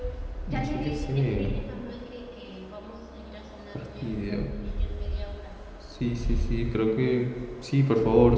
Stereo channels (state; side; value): identical; both; correlation 1.00